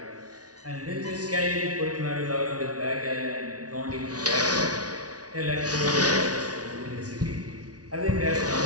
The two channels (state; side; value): late; left; 0.68 ms